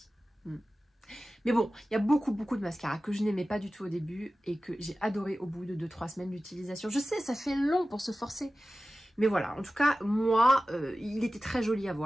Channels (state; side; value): normal; both; correlation 0.95